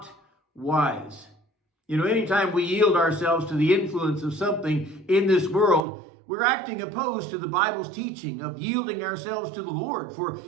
wise." Anytime we yield ourselves to the influence of something in this world, we're acting opposed to the Bible's teaching of yielding ourselves to the Lord for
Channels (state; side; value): drops out; left; at 5.9 s